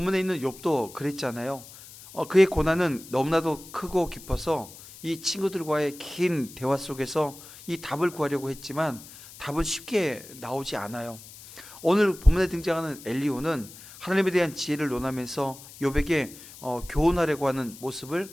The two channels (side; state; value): left; noise; hiss, 18 dB below the sound